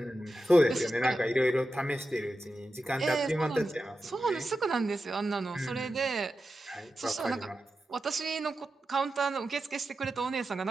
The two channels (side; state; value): both; normal; correlation 0.91